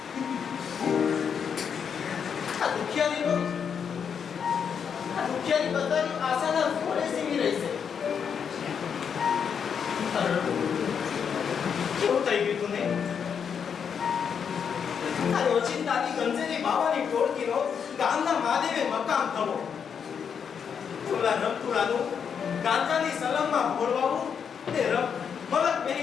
આ દુખિયારી બધાની આશાના ઘોડે સીવી રહી છે. કેવું થઈ ગયું તું ને? આ રોજિંદાની ગંજેરી બાવાની ટોળકીનો ગામના મહાદેવે મકામ થવો. ઓલા રમતુલાનું ગાંજાની સલમમાં ફોડવાવું તે મલક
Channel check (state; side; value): quieter; right; 7.1 dB